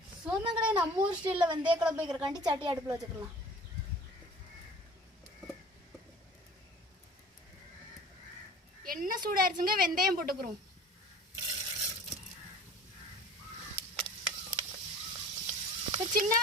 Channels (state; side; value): normal; both; correlation 0.44